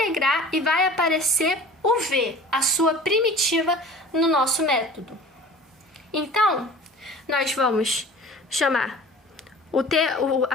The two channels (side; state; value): both; normal; correlation 0.43